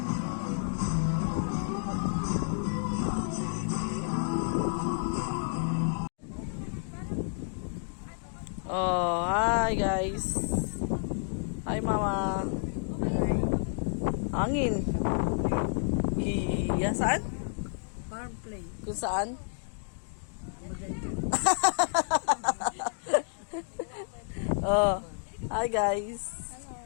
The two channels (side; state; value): right; silent; digital silence